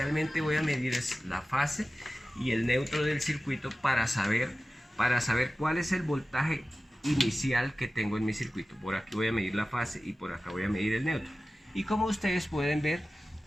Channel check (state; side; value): normal; both; correlation 0.95